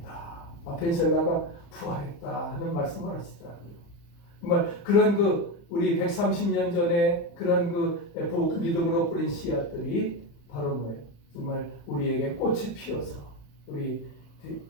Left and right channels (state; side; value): late; right; 35 ms